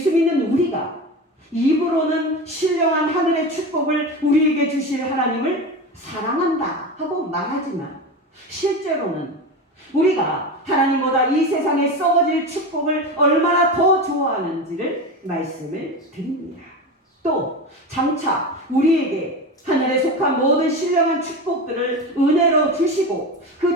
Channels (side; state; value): both; normal; correlation 0.24